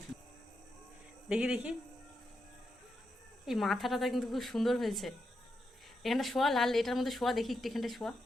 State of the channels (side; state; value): both; normal; correlation 0.85